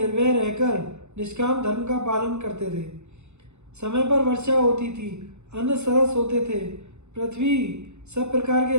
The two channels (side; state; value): left; late; 0.82 ms